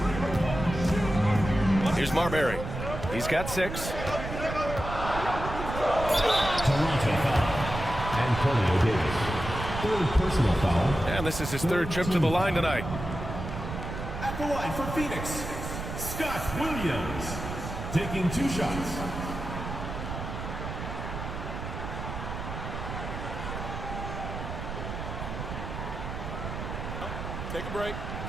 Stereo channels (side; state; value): right; noise; rumble, 6 dB below the sound